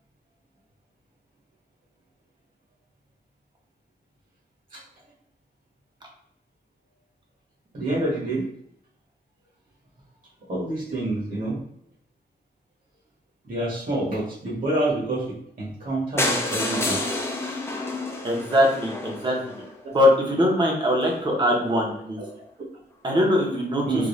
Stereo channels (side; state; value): both; normal; correlation 0.59